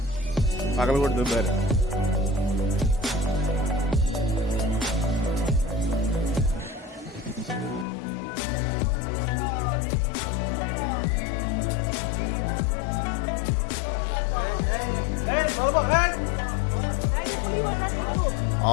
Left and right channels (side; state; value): right; drops out; at 7.9 s